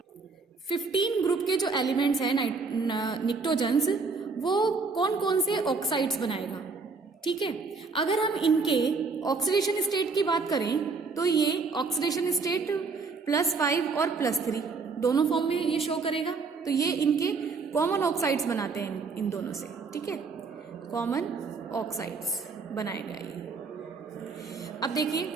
15 ग्रुप के जो एलिमेंट्स हैं निक्टोजन्स, वो कौन कौन से ऑक्साइड्स बनाएगा? ठीक है, अगर हम इनके ऑक्सीडेशन स्टेट की बात करें तो ये ऑक्सीडेशन स्टेट +5 और +3 दोनों फॉर्म में ये शो करेगा। तो ये इनके कॉमन ऑक्साइड्स बनाते हैं इन दोनों से। ठीक है, कॉमन ऑक्साइड्स बनाएगा ये। अब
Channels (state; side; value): quieter; left; 4.5 dB